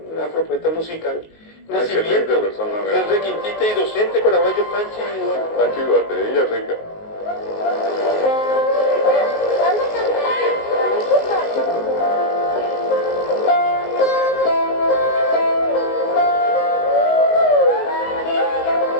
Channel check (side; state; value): right; late; 19 ms